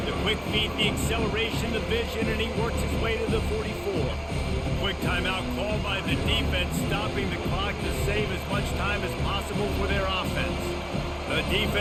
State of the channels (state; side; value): identical; both; correlation 1.00